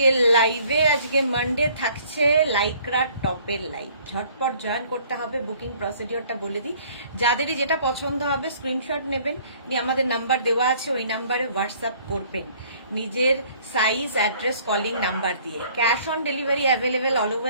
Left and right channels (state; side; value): inverted; both; correlation -0.57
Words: লাইভে। আজকে মানডে থাকছে লাইক্রা টপের লাইভ। ঝটপট জয়েন করতে হবে। বুকিং প্রসিডিওরটা বলে দিই, যাদেরই যেটা পছন্দ হবে স্ক্রিনশট নেবেন, নিয়ে আমাদের নাম্বার দেওয়া আছে, ওই নাম্বারে হোয়াটসঅ্যাপ করবেন নিজের সাইজ, অ্যাড্রেস, কলিং নাম্বার দিয়ে। Cash on delivery available all